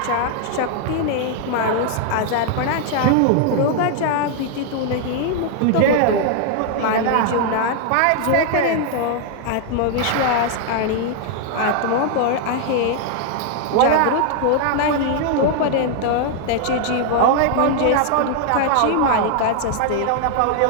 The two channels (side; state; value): both; different; correlation 0.00